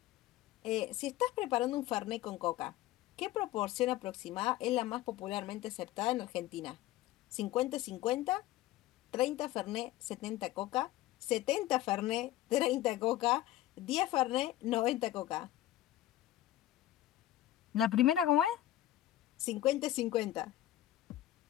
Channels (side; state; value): right; quieter; 14.3 dB